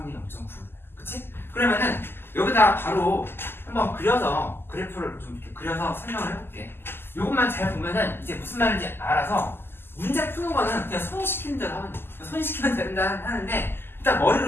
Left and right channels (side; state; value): right; late; 0.11 ms